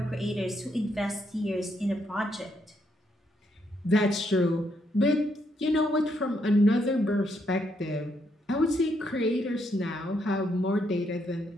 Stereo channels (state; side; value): normal; both; correlation 0.76